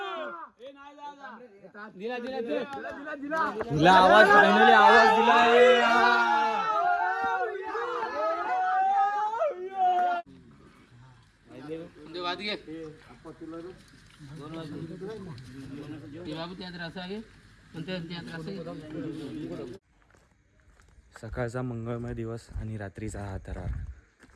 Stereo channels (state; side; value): identical; both; correlation 1.00